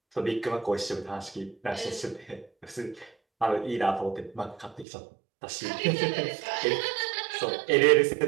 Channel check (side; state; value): left; drops out; at 4.9 s